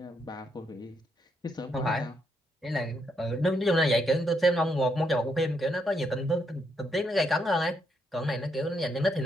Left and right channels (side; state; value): both; normal; correlation 0.77